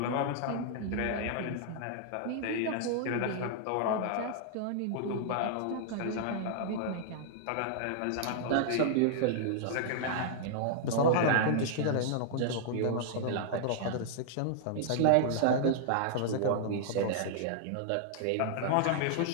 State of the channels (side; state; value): both; different; correlation -0.01